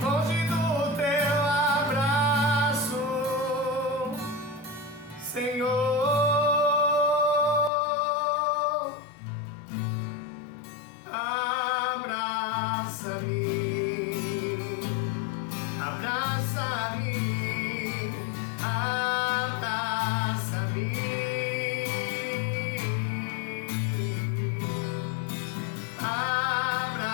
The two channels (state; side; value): drops out; right; at 7.7 s